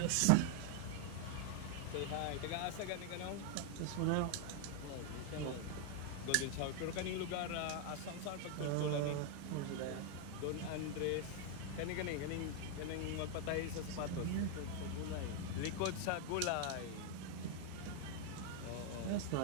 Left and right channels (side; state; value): both; different; correlation 0.00